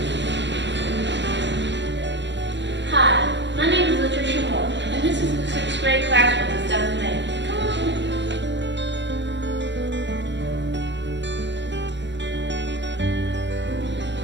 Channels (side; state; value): left; late; 0.52 ms